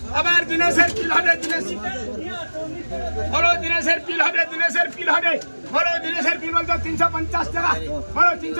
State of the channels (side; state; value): both; inverted; correlation -1.00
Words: আবার দিনেশের পিল হবে বলো দিনেশের পিল হবে বলো দিনেশের পিল বলতো 350 টাকা বলো